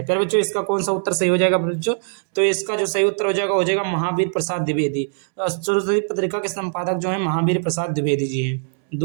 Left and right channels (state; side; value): silent; left; digital silence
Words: फिर बच्चों इसका कौन सा उत्तर सही हो जाएगा बच्चों? तो इसका जो सही उत्तर हो जाएगा महावीर प्रसाद द्विवेदी। सरस्वती पत्रिका के संपादक जो है महावीर प्रसाद द्विवेदी जी हैं।